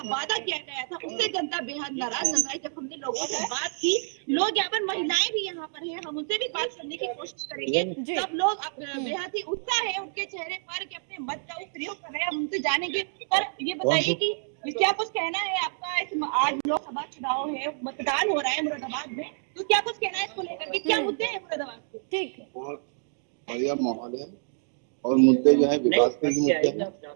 वादा किया गया था उससे जनता बेहद नाराज नजर आई। जब हमने लोगों से बात की, लोग यहाँ पर, महिलाएं भी यहाँ पर हैं, हम उनसे भी बात करने की कोशिश करेंगे। सब लोग बेहद ही उत्साह है उनके चेहरे पर कि अपने मत का प्रयोग कर रहे हैं, हम उनसे जानेंगे। पर ये बताइए कि क्या कुछ कहना है आपका? आज लोकसभा चुनाव है, मतदान हो रहा है मुरादाबाद में, तो क्या कुछ कहना है इसको लेकर के? क्या मुद्दे हैं मुरादाबाद के? ठीक, बहुत बढ़िया माहौल है और मुद्दे जो है विकास के मुद्दे हैं,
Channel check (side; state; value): left; silent; digital silence